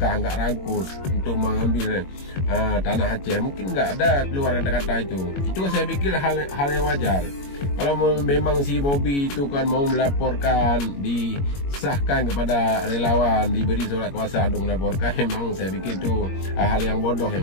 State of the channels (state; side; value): late; right; 21 ms